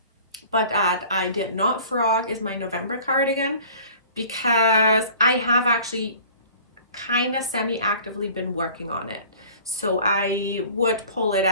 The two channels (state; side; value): inverted; both; correlation -0.47